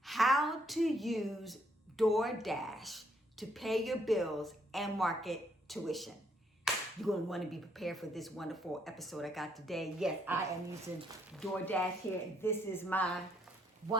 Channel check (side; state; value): both; normal; correlation 0.71